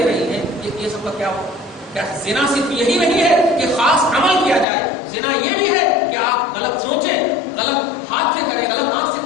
رہی ہیں، یہ سب کا کیا ہو؟ کیا زنا صرف یہی نہیں ہے کہ خاص عمل کیا جائے، زنا یہ بھی ہے کہ آپ غلط سوچیں، غلط ہاتھ سے کریں، غلط آنکھ سے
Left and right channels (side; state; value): right; drops out; at 4.7 s